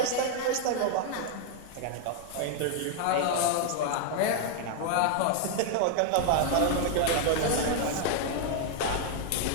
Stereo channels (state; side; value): different; both; correlation 0.00